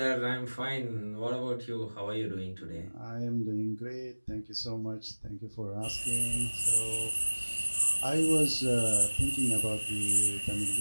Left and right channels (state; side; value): inverted; both; correlation -1.00